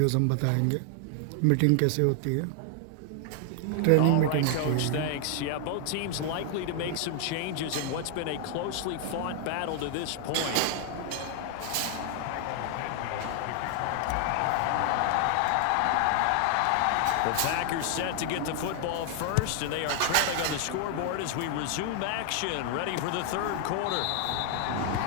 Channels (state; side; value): different; both; correlation 0.00